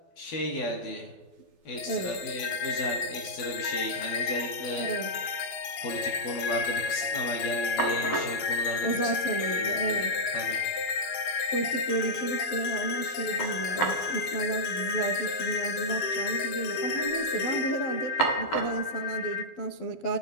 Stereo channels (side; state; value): right; late; 12 ms